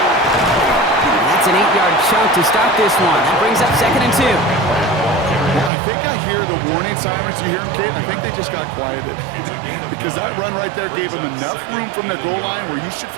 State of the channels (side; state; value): left; drops out; at 5.7 s